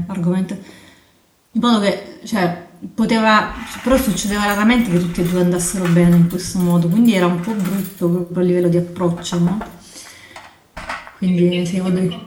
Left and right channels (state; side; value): identical; both; correlation 1.00